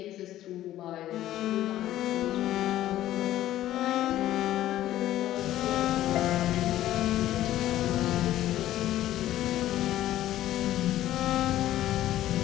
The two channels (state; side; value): quieter; right; 13.6 dB